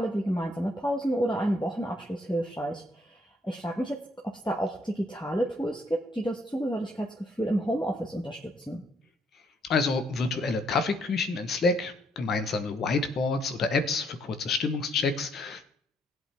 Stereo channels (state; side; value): normal; both; correlation 0.71